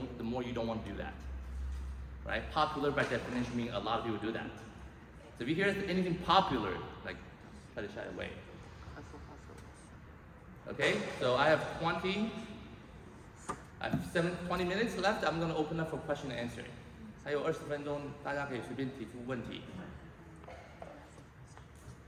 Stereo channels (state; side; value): identical; both; correlation 1.00